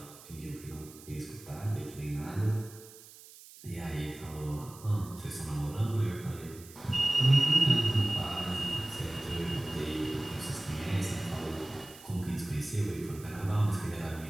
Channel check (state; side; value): noise; right; hiss, 19 dB below the sound